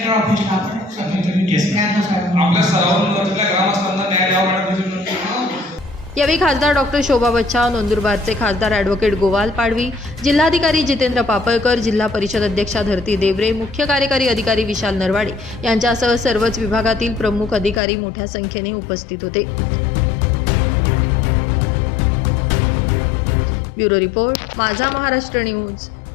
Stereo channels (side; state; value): right; drops out; at 17.8 s